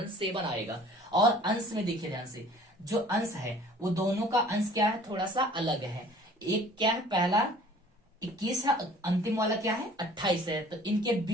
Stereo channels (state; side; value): normal; both; correlation 0.51